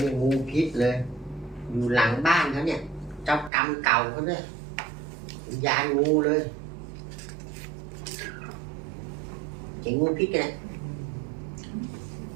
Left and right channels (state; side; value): drops out; left; at 3.5 s